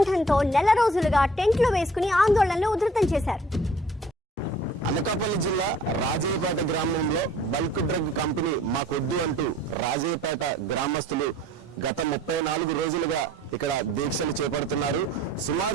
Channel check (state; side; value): normal; both; correlation 0.52